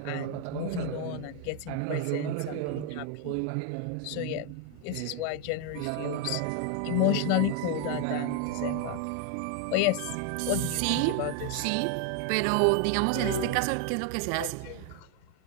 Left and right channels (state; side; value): different; both; correlation 0.01